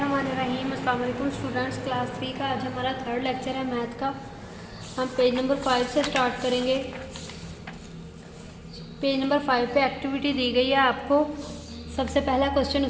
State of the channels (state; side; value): identical; both; correlation 1.00